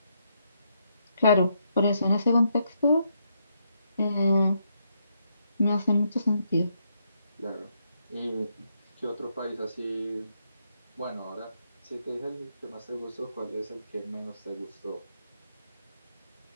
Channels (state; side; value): inverted; both; correlation -0.77